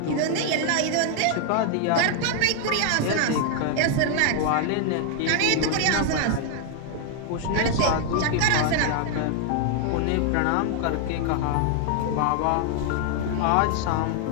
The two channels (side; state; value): both; different; correlation 0.00